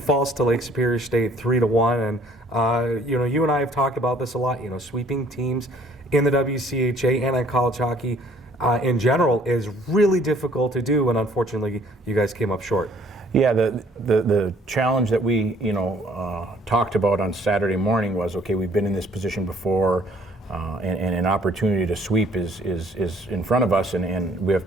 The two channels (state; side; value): normal; both; correlation 0.60